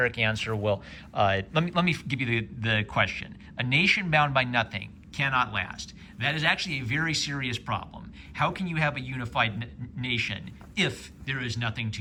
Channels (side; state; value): both; identical; correlation 1.00